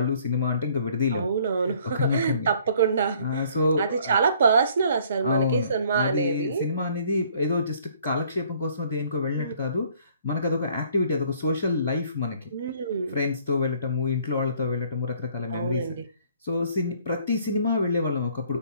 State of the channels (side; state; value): both; inverted; correlation -0.60